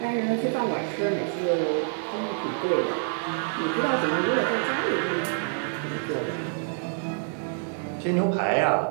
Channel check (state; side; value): silent; left; digital silence